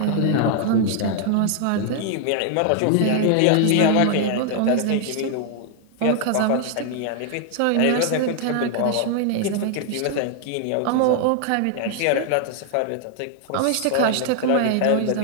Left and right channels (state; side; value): different; both; correlation 0.00